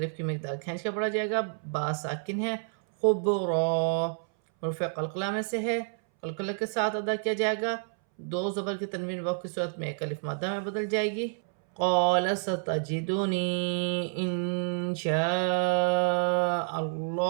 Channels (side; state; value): left; silent; 59 dB below the other